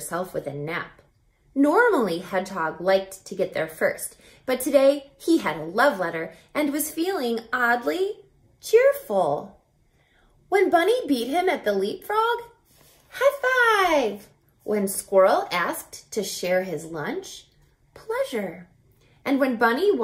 with a nap. Normally, Hedgehog liked to get there first, but today he had a love letter and was feeling oddly cheerful. When Bunny beat him at the leapfrog, high five! When Squirrel asked to share his lunch, pleasure. And when Bunny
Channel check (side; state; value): both; identical; correlation 1.00